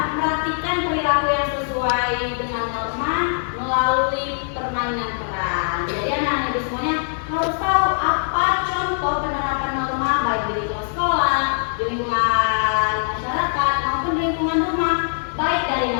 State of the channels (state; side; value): silent; right; digital silence